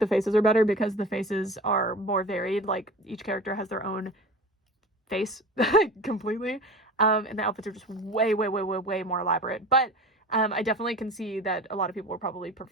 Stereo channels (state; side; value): normal; both; correlation 0.35